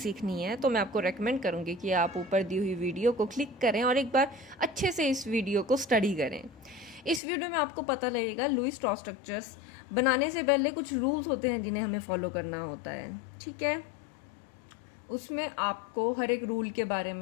है। तो मैं आपको रेकमेंड करूँगी कि आप ऊपर दी हुई वीडियो को क्लिक करें और एक बार अच्छे से इस वीडियो को स्टडी करें। इस वीडियो में आपको पता लगेगा लुईस डॉट स्ट्रक्चर्स बनाने से पहले कुछ रूल्स होते हैं जिन्हें हमें फॉलो करना होता है, ठीक है। उसमें आपको हर एक रूल के बारे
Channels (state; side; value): drops out; right; at 7.2 s